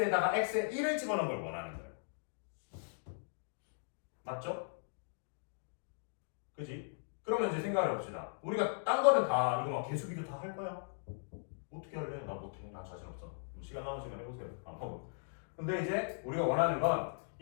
X에 1을 집어넣은 걸 원하는 거예요. 맞죠? 그지? 그러면 이제 생각을 해봅시다. 우리가 딴 거는 다 이거 막 개수 비교 다 할 거야. 어떻게 할래? 나 못해. 나 자신 없어. 시간 남은 시간 해보세요. 안 하고. 근데 이제 우리가 원하는 건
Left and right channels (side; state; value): right; silent; digital silence